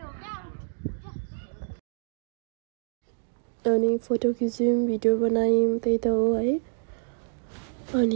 अनि फोटो खिच्यौँ भिडियो बनायौँ त्यही त हो है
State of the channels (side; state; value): left; silent; digital silence